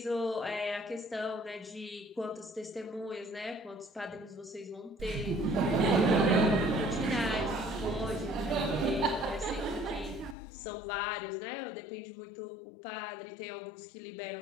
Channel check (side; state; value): right; drops out; at 10.4 s